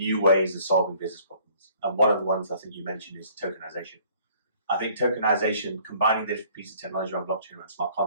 ways of solving business problems. And one of the ones I think you mentioned is tokenization. I think tokenization, combining different pieces of technology around blockchain, around smart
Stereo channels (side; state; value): both; inverted; correlation -0.58